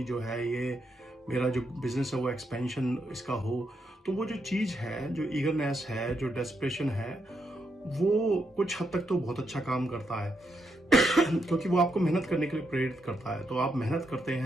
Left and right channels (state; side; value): normal; both; correlation 0.80